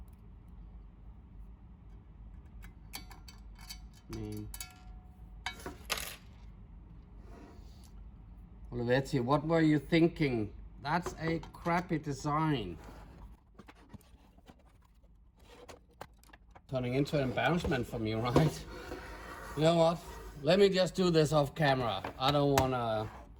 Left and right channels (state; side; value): identical; both; correlation 1.00